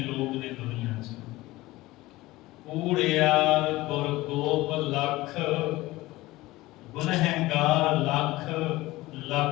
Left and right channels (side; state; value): right; quieter; 18.8 dB